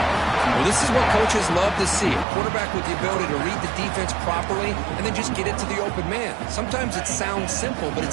Well, this is what coaches love to see. A quarterback with the ability to read the defense properly and then just get it to the open man. Sometimes it sounds simple, but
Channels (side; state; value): left; drops out; at 2.2 s